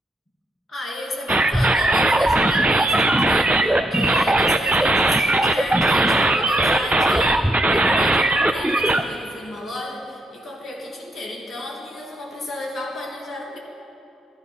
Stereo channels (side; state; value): both; normal; correlation 0.77